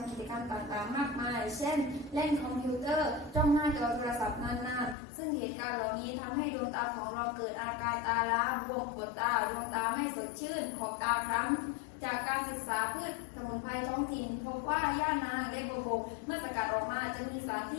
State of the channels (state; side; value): drops out; right; at 5.0 s